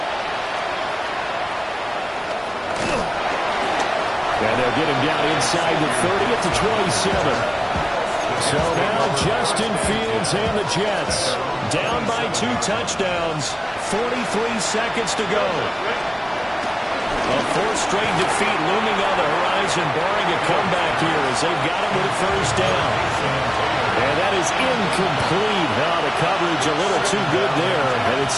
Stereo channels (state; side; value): identical; both; correlation 1.00